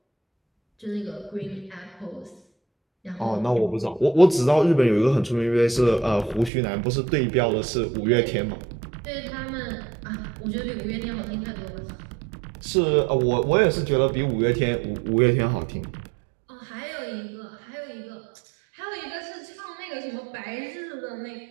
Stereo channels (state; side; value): drops out; left; at 6.5 s